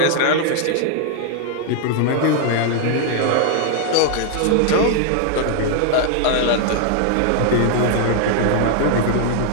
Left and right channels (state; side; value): different; both; correlation 0.00